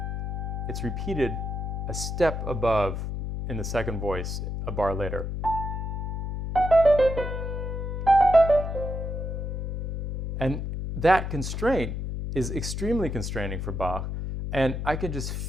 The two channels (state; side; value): noise; left; hum, 3 dB below the sound